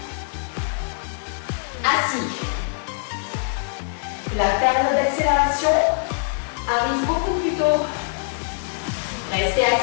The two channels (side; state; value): right; silent; 63 dB below the other